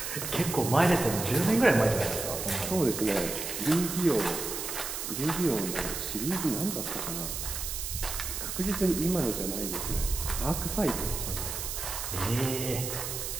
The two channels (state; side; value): noise; right; hiss, 5 dB below the sound